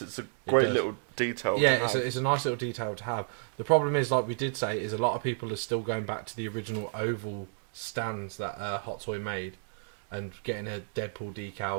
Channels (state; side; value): silent; left; digital silence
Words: a great little detail. Yeah, it's a nice little detail to have. The problem is, like we did say, is a lot of people are still going back to the original oval stands that Hot Toy made and getting a Deadpool